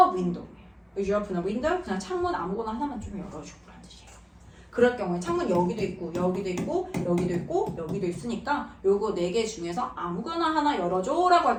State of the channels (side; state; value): both; identical; correlation 1.00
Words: window? Would you open a window? 그냥 창문 아무거나 하나만 좀 열어주라는 뜻이에요. 그럴 경우에 창문 여기도 있고 여기도 있고 여기도 있고 여기도 있으니까 요거 4개 중에서 아무거나 하나 열어줘 라고 할